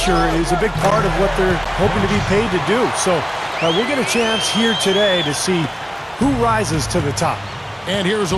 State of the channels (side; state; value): both; identical; correlation 1.00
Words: is a big part of what they're hoping to be paid to do. So we'll get a chance here today to see who rises to the top. And here's a